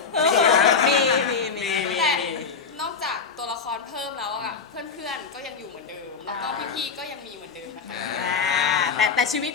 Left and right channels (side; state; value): right; quieter; 5.5 dB